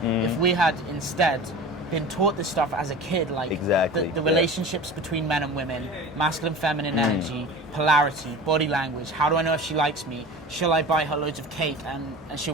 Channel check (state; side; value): normal; both; correlation 0.35